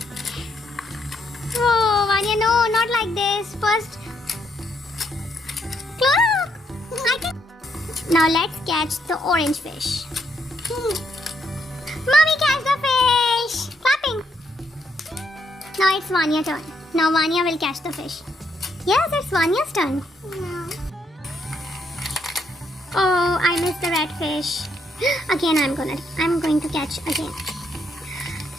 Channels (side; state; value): both; normal; correlation 0.75